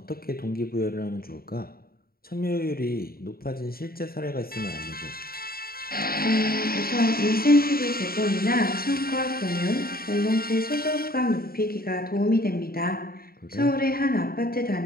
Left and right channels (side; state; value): right; late; 0.43 ms